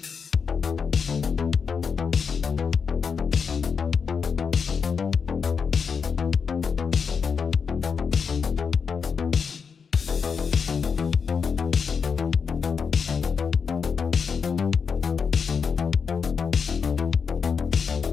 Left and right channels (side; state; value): right; quieter; 6.0 dB